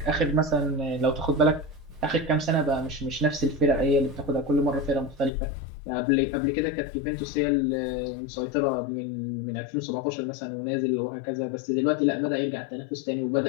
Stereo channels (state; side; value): drops out; right; at 5.3 s